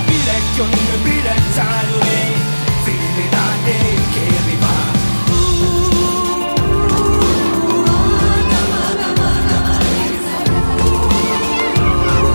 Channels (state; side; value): inverted; both; correlation -1.00